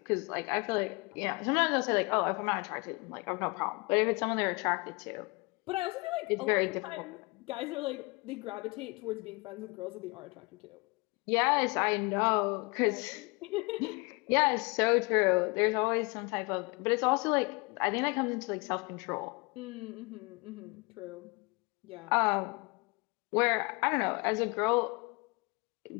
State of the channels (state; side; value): quieter; right; 27.9 dB